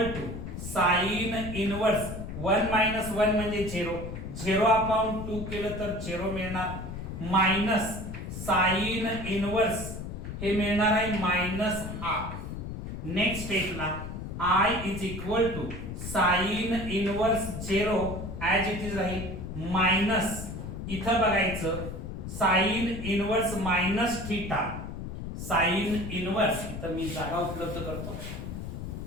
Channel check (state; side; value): noise; left; rumble, 7 dB below the sound